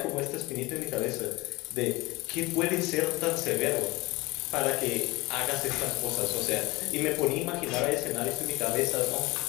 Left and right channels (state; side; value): quieter; right; 22.4 dB